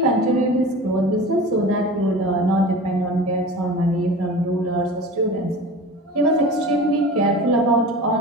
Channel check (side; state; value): both; normal; correlation 0.36